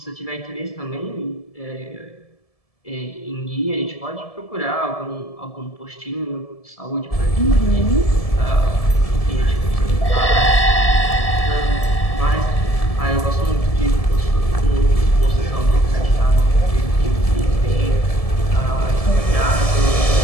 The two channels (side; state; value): right; late; 1.7 ms